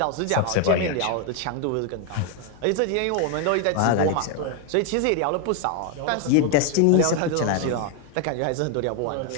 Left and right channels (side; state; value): both; different; correlation 0.01